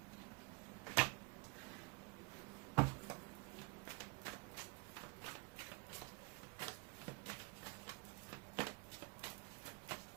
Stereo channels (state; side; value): quieter; left; 26.8 dB